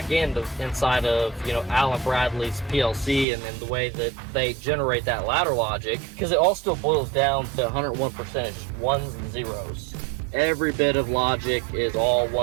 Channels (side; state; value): left; drops out; at 3.2 s